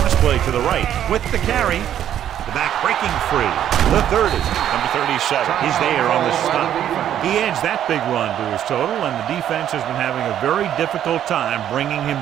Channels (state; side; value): quieter; left; 10.6 dB